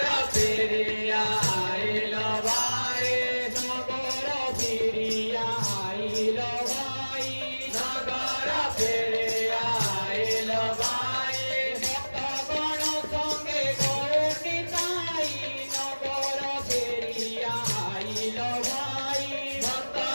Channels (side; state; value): both; inverted; correlation -1.00